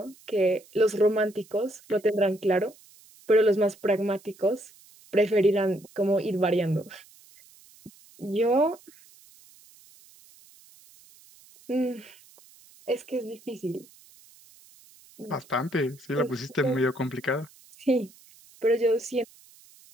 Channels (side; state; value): right; noise; hiss, 26 dB below the sound